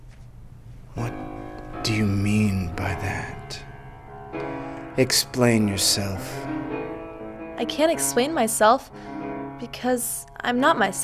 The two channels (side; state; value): both; identical; correlation 1.00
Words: What do you mean by that? Explain yourself. I can't explain myself because I'm not